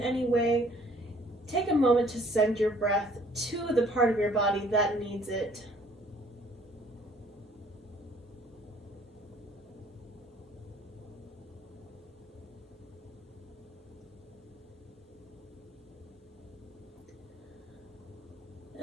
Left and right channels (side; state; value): both; normal; correlation 0.58